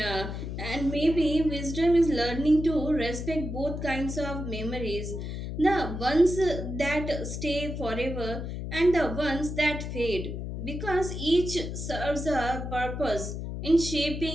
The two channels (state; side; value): noise; left; hum, 6 dB below the sound